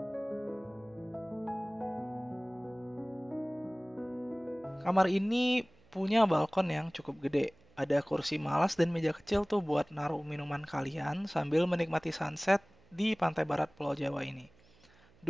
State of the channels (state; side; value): noise; right; hum, 29 dB below the sound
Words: Kamar ini punya balkon yang cukup gede. Ada kursi malas dan meja kecil tuh buat naruh minuman kalian sambil menikmati sunset di pantai barat Pulau Jawa ini.